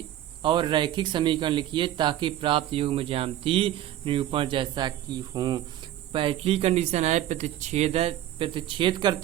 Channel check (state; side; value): quieter; left; 12.8 dB